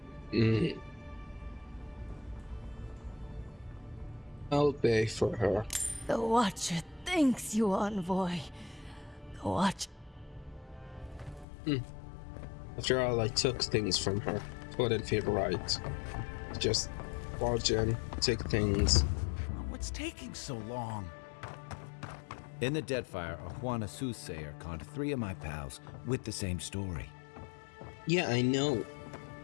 I'll pay for her. The Watcher thanks you, envoy. The Watcher. After all, I took things from her. It wouldn't feel right. Just barge in, take things. What's taking so long? In the Deadfire, a Juana soothsayer conned 3 of my pals with the same story. Yeah, I know.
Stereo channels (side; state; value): right; drops out; at 11.5 s